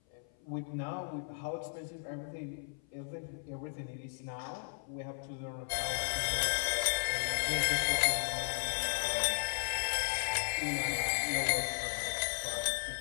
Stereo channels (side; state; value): right; silent; 54 dB below the other